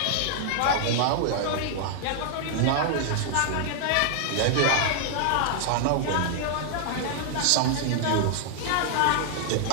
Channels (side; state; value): both; different; correlation 0.00